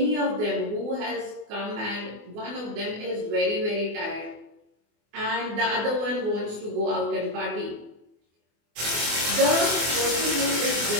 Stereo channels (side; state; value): left; late; 24 ms